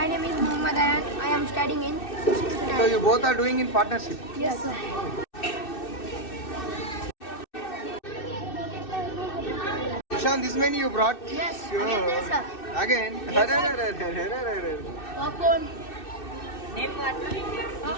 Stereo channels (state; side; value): late; right; 2.6 ms